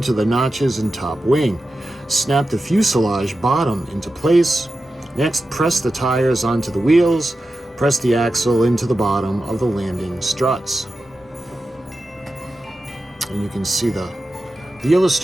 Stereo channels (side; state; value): both; normal; correlation 0.92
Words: the notches in top wing. Snap the fuselage bottom into place. Next, press the tires onto the wheels. Press the axle into the bottom of the landing struts. And you can see the